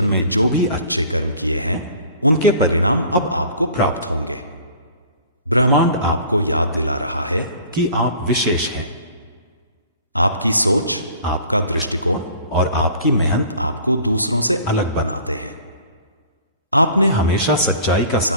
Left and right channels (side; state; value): both; inverted; correlation -0.48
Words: में जो भी अच्छे कर्म किए हैं, उनके परिणाम अब आपको प्राप्त होंगे। ब्रह्मांड आपको याद दिला रहा है कि आप विशेष हैं। आपकी सोच, आपका दृष्टिकोण और आपकी मेहनत आपको दूसरों से अलग बनाते हैं। आपने हमेशा सच्चाई का